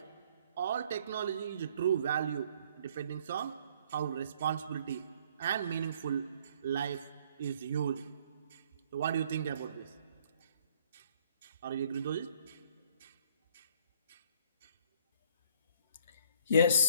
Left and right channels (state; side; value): inverted; both; correlation -0.62